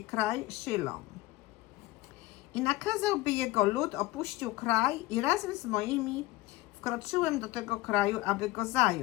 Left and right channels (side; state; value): right; quieter; 18.0 dB